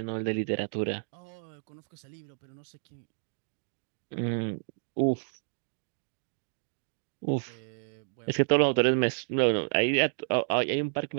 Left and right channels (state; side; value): silent; left; digital silence